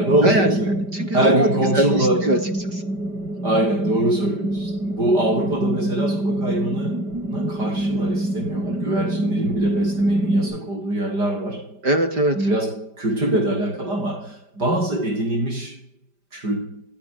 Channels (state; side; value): late; left; 5.1 ms